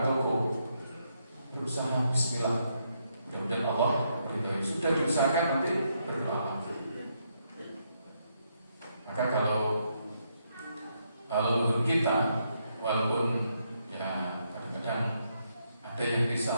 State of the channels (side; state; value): both; inverted; correlation -0.77